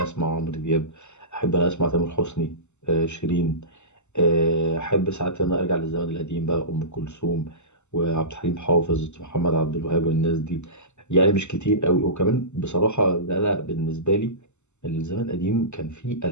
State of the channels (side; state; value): right; late; 0.83 ms